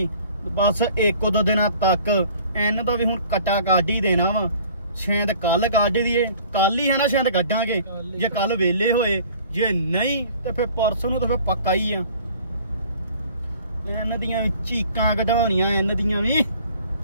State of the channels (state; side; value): inverted; both; correlation -0.51